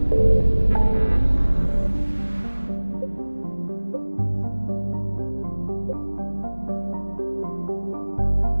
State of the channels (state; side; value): inverted; both; correlation -1.00